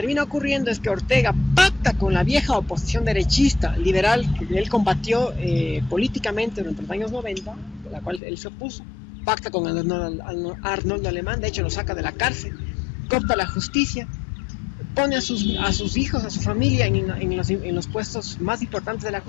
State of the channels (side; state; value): right; drops out; at 8.2 s